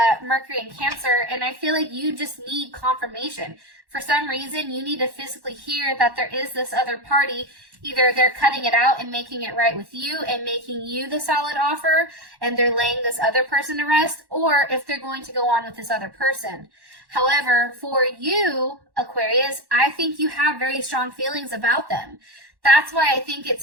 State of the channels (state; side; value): late; left; 1.1 ms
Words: Mercury and Cancer. And I feel like you just need confirmation. For some reason, you need to physically hear that there is this other party. Either they're cutting it out and making it right with you and making you the solid offer and they're laying this other person to rest, or if they're going to go on with this other person. However, for you, Aquarius, I think you have very strong feelings about them. That's why I think it's